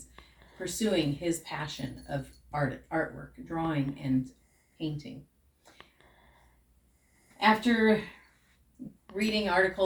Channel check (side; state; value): both; identical; correlation 1.00